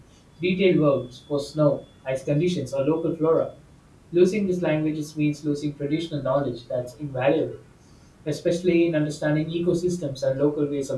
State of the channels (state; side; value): identical; both; correlation 1.00